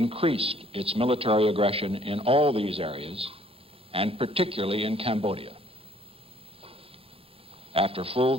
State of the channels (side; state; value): left; late; 0.27 ms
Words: its military aggression in all these areas, and particularly in Cambodia. After full